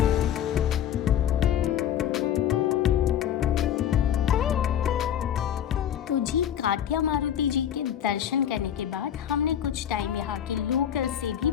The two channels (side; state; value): right; quieter; 9.9 dB